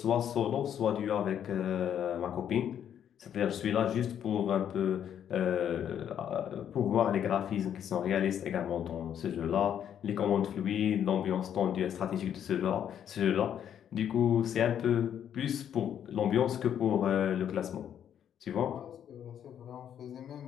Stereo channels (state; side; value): quieter; right; 9.4 dB